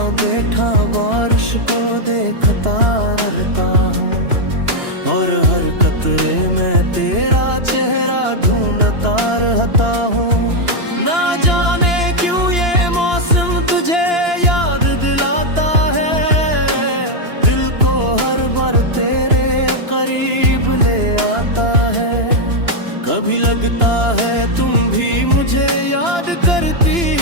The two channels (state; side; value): late; left; 2.9 ms